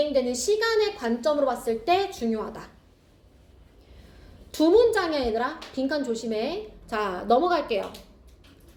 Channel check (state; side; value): identical; both; correlation 1.00